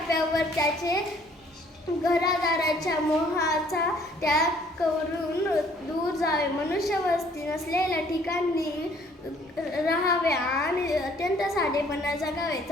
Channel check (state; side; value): normal; both; correlation 0.60